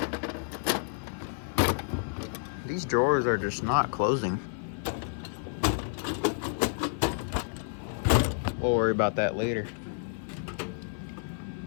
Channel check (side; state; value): right; silent; 56 dB below the other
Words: these drawers are just not closing. We'll worry about that later.